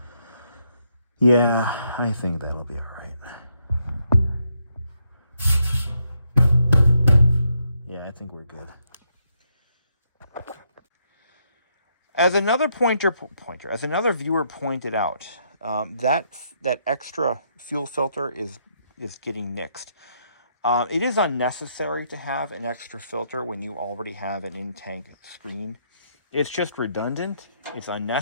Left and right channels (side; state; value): both; inverted; correlation -0.76